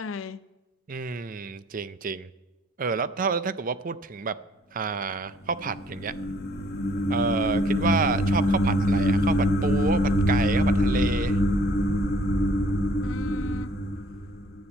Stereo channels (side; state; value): both; normal; correlation 0.59